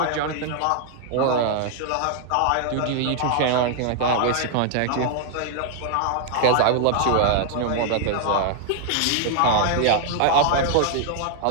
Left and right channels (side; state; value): both; different; correlation 0.00